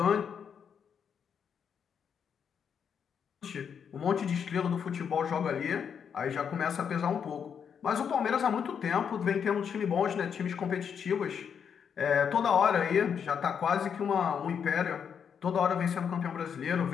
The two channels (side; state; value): right; quieter; 7.4 dB